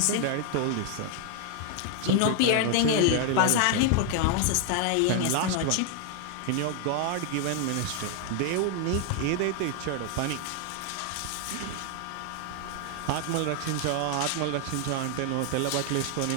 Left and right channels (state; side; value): different; both; correlation 0.00